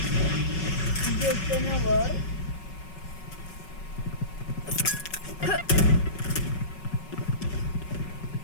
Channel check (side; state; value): right; late; 5.4 ms